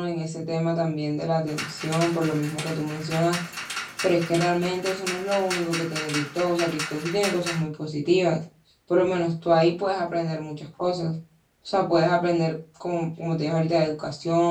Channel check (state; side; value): identical; both; correlation 1.00